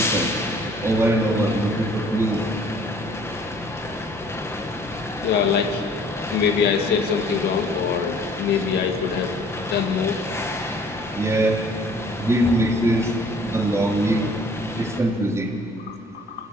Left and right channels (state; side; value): normal; both; correlation 0.55